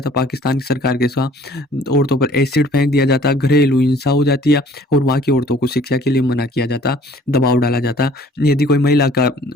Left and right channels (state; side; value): normal; both; correlation 0.54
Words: पाकिस्तान की सरकार के साथ। औरतों पर एसिड फेंक दिया जाता है, घरेलू हिंसा हो जाती है और वहाँ की औरतों को शिक्षा के लिए मना किया जाता, दबाव डाला जाता। यदि कोई महिला का